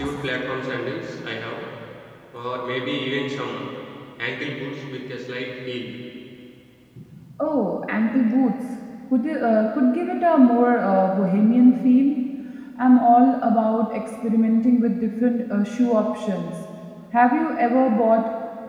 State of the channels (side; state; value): both; identical; correlation 1.00